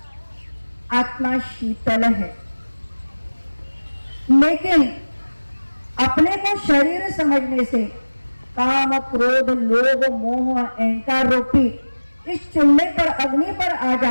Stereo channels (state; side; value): inverted; both; correlation -1.00